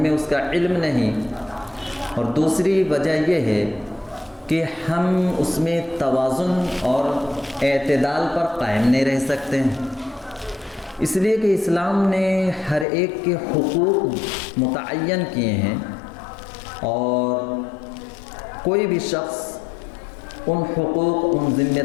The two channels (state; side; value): drops out; right; at 12.9 s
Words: اس کا علم نہیں، اور دوسری وجہ یہ ہے کہ ہم اس میں توازن اور اعتدال پر قائم نہیں رہ سکتے ہیں، اس لیے کہ اسلام نے ہر ایک کے حقوق متعین کیے ہیں، اور کوئی بھی شخص ان حقوق، ان ذمہ